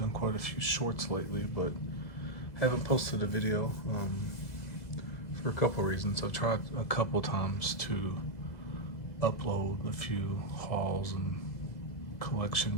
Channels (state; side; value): late; right; 2.0 ms